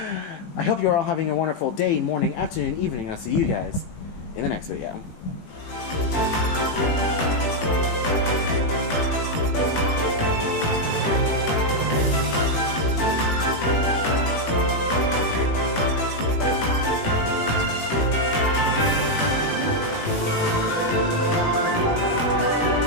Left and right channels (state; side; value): late; right; 18 ms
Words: I hope you're all having a wonderful day, morning, afternoon, evening, and I'll see you guys in the next video.